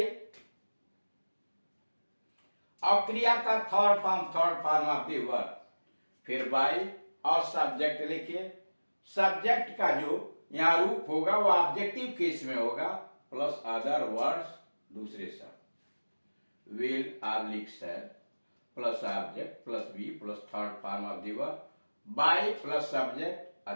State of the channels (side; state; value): both; inverted; correlation -1.00